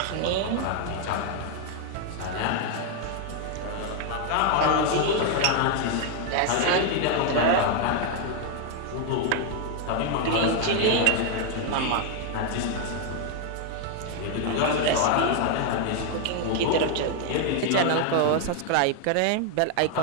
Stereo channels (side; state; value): both; different; correlation 0.00